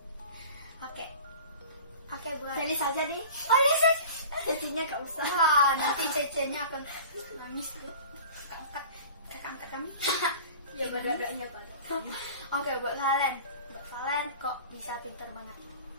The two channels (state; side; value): inverted; both; correlation -0.40